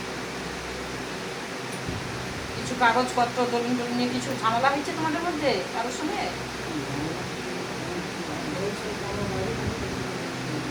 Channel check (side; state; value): both; identical; correlation 1.00